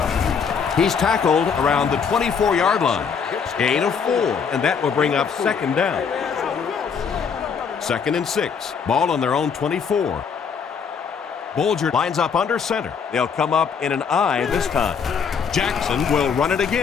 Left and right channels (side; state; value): right; quieter; 6.4 dB